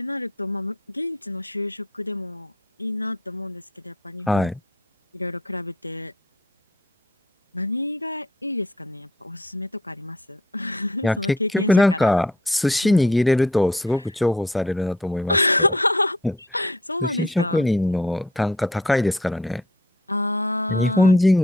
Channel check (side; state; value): both; normal; correlation 0.50